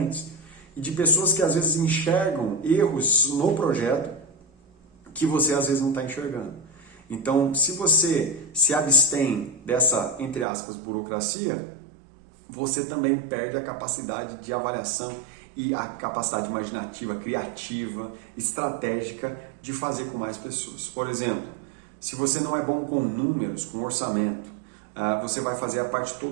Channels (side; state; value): left; drops out; at 10.5 s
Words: e de pessoas que às vezes enxergam erros no projeto que você às vezes não está enxergando. Então, se você se abstém dessa, entre aspas, burocracia, você também perde a capacidade de avaliação e a capacidade imaginativa, criativa, estratégica de fazer com mais pessoas. Por exemplo, se você não é bom com números, com orçamento, você vai fazer a parte